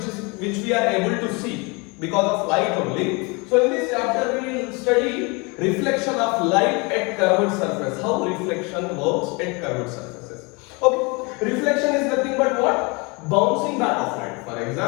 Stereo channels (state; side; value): quieter; right; 28.8 dB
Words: which we are able to see because of light only. So in this chapter we will study reflection of light at curved surface. How reflection works at curved surfaces. Okay, reflection is nothing but what? Bouncing back of light. For